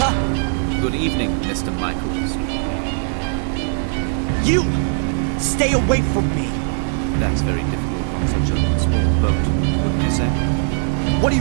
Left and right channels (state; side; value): silent; left; 66 dB below the other